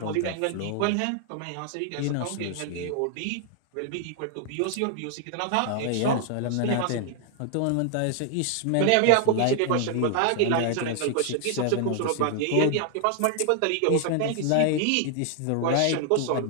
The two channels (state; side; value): different; both; correlation 0.00